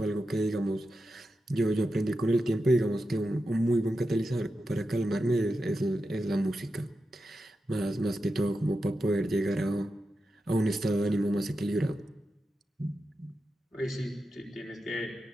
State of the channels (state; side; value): normal; both; correlation 0.90